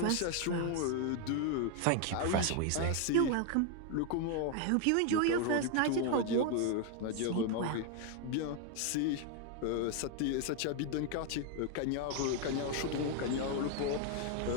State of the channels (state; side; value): different; both; correlation 0.01